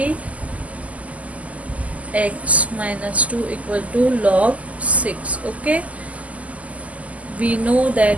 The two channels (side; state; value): left; late; 0.071 ms